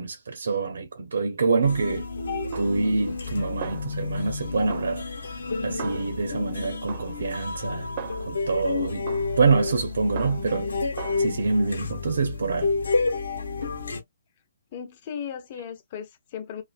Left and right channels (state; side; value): inverted; both; correlation -0.82